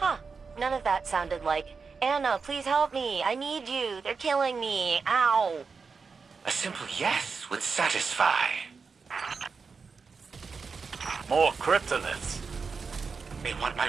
None of that sounded like, Anna, please help me. I need you. They're killing me. Ow. A simple yes would satisfy. More cryptoliths. They want my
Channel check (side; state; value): left; quieter; 5.1 dB